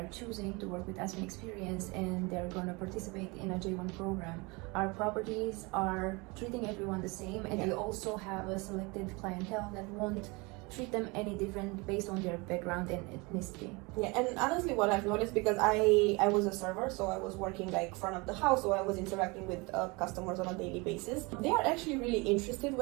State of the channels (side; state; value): left; quieter; 26.9 dB